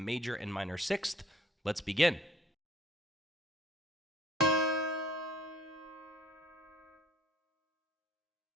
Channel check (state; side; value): normal; both; correlation 0.55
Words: and minor sixth. Let's begin.